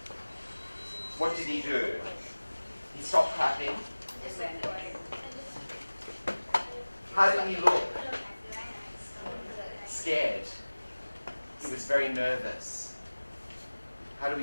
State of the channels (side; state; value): both; inverted; correlation -1.00